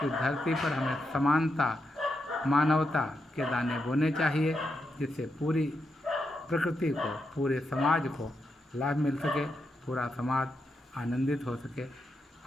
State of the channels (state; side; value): normal; both; correlation 0.84